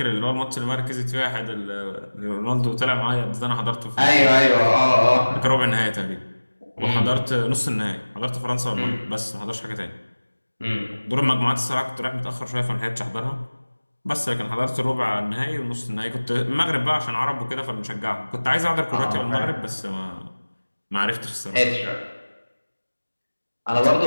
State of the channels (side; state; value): both; inverted; correlation -1.00